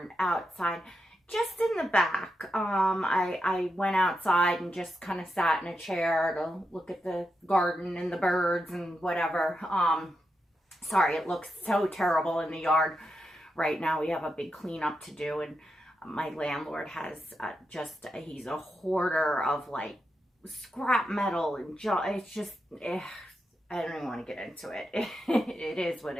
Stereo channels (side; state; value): both; normal; correlation 0.86